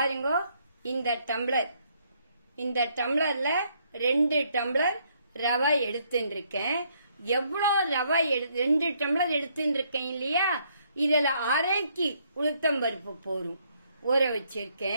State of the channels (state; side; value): inverted; both; correlation -0.70